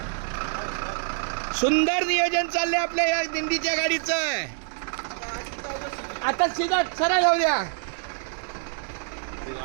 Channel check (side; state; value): left; silent; digital silence